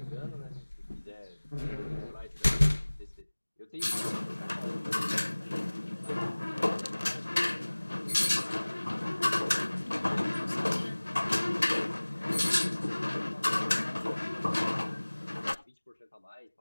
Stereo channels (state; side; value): inverted; both; correlation -1.00